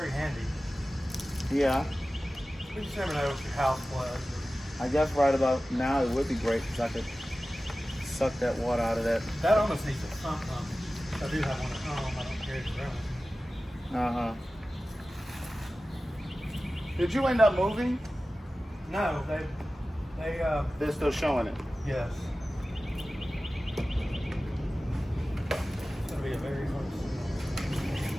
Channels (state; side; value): normal; both; correlation 0.96